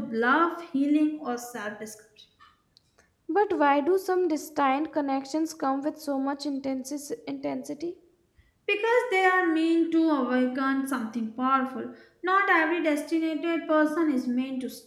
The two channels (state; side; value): identical; both; correlation 1.00